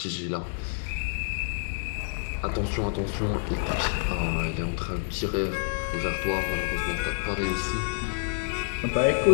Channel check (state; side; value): silent; right; digital silence